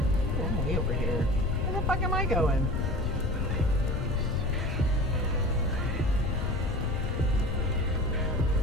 I'm way over here. Where the fuck am I going?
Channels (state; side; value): normal; both; correlation 0.37